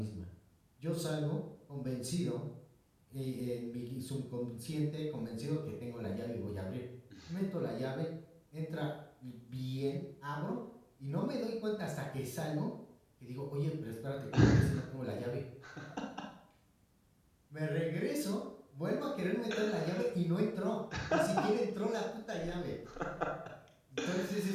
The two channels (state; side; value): identical; both; correlation 1.00